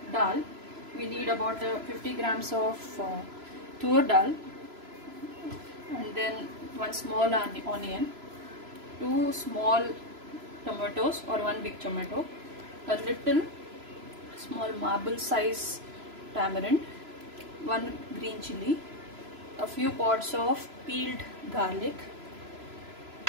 dal, we need about 50 grams of tur dal, and then one small onion, 2 small tomatoes or 1 big tomato, a little small marble size tamarind, 1 green chili, a few pods of peeled garlic.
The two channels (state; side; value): late; left; 3.0 ms